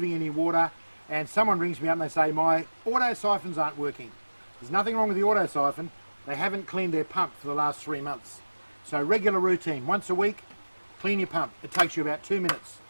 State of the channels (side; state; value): both; inverted; correlation -1.00